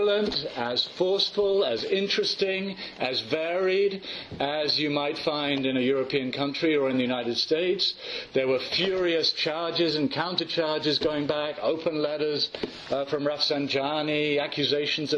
as forceful, as interesting, as varied as you might find in a European country or in the United States. There were furious charges and countercharges going back, open letters from Rafsanjani, accusations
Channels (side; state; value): both; identical; correlation 1.00